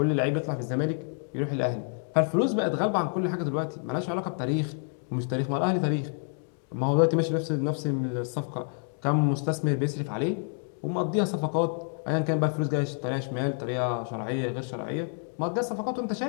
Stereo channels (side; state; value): right; silent; 59 dB below the other